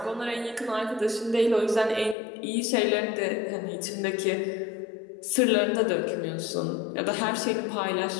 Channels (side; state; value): right; drops out; at 2.1 s